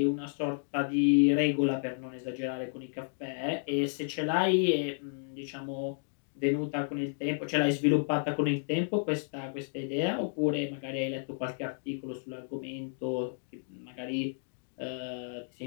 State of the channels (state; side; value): silent; right; digital silence